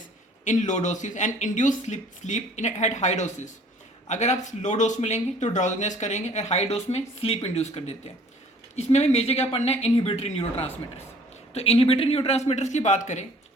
in low doses and induce sleep in at high doses. अगर आप लो डोज में लेंगे तो ड्राउजीनेस करेंगे और हाई डोज में स्लीप इंड्यूस कर देते हैं. इसमें भी मेजर क्या पढ़ना है? Inhibitory neurotransmitters. तो इनहिबिटरी न्यूरोट्रांसमीटर्स की बात करें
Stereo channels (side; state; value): both; normal; correlation 0.54